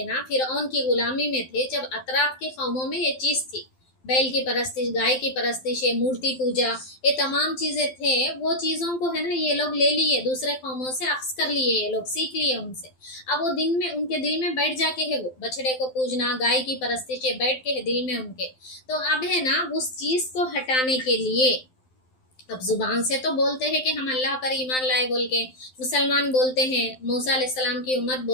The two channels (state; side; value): late; right; 12 ms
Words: ना, फिरौन की गुलामी में थे, जब अतराफ के कौमों में ये चीज़ थी, बैल की परस्तिश, गाय की परस्तिश, मूर्ति पूजा, ये तमाम चीज़ें थे, वो चीज़ों को है ना ये लोग ले लिए, दूसरे कौमों से अक्स कर लिए, ये लोग सीख लिए उनसे। अब वो दिन में उनके दिल में बैठ जाके है वो बछड़े को पूजना, गाय की परस्तिश बैठ के है दिल में उनके। तो अब है ना उस चीज़ को हटाने के लिए अब जुबान से तो बोलते हैं कि हम अल्लाह पर ईमान लाए बोल के, मुसलमान बोलते हैं, मूसा अलैहिस्सलाम की उम्मत